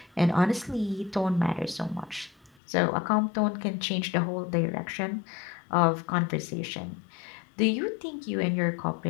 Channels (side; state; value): right; drops out; at 2.5 s